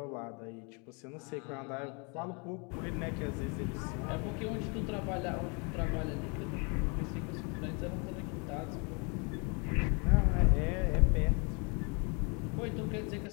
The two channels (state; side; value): quieter; right; 33.6 dB